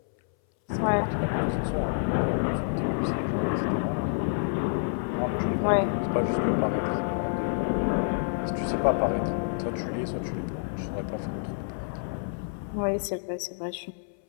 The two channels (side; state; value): right; silent; 59 dB below the other